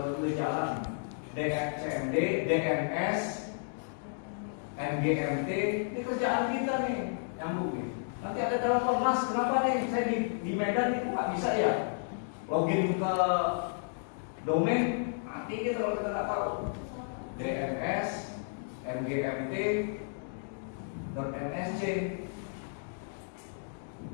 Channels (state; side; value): silent; right; digital silence